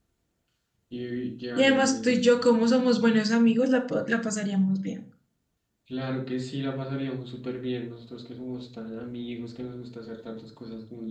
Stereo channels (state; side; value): identical; both; correlation 1.00